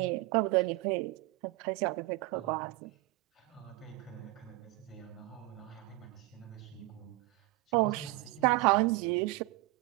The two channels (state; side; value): quieter; left; 20.3 dB